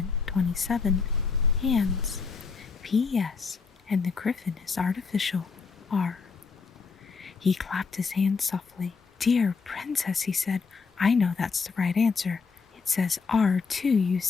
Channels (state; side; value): quieter; right; 5.0 dB